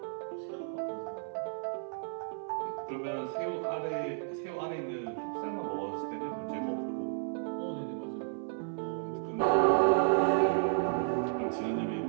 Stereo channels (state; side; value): silent; left; 56 dB below the other